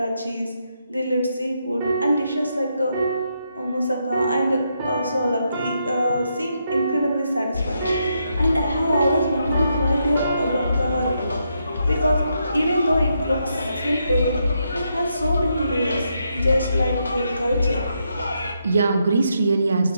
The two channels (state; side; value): inverted; both; correlation -0.80